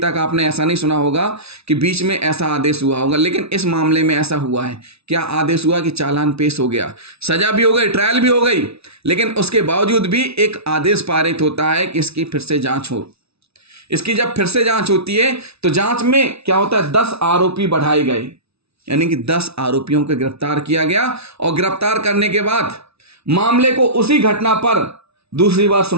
आपने ऐसा नहीं सुना होगा कि बीच में ऐसा आदेश हुआ होगा, लेकिन इस मामले में ऐसा हुआ है। क्या आदेश हुआ कि चालान पेश हो गया, सजा भी हो गई, ट्रायल भी हो गई, लेकिन उसके बावजूद भी एक आदेश पारित होता है कि इसकी फिर से जांच हो। इसकी जब फिर से जांच होती है तो जांच में क्या होता है, 10 आरोपी बढ़ाए गए, यानी कि 10 आरोपियों को गिरफ्तार किया गया। और गिरफ्तार करने के बाद मामले को उसी घटना पर दूसरी बार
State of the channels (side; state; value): left; late; 0.79 ms